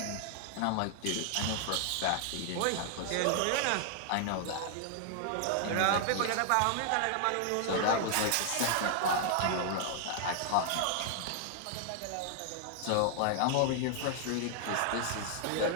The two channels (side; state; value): both; different; correlation 0.00